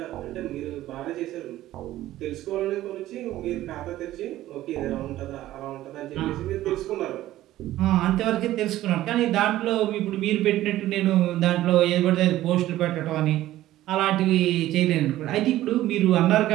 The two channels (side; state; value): left; quieter; 14.7 dB